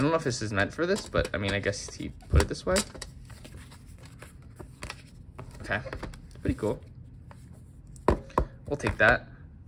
don't know if this is meant for this, but I mean, I guess he put it this way. Okay, it's pretty cool. We'll take that.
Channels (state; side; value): identical; both; correlation 1.00